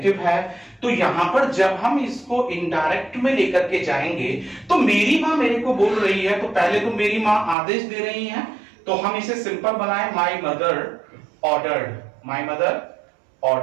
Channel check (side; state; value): left; drops out; at 7.6 s